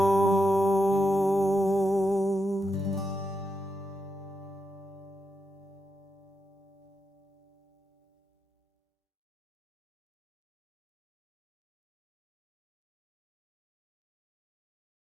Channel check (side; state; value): both; normal; correlation 0.85